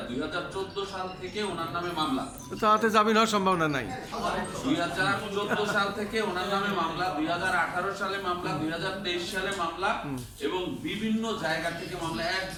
2014 সাল থেকে ওনার নামে মামলা, তাতে জামিন হওয়ার সম্ভাবনা নাই। 2014 সাল থেকে ওনার নামে মামলা, 2018 সালে মামলা, 2023 সালে মামলা, এবং বিভিন্ন জায়গা থেকে মামলা,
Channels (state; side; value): identical; both; correlation 1.00